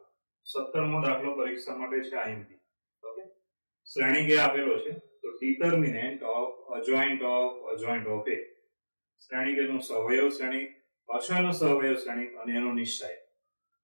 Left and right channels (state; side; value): inverted; both; correlation -1.00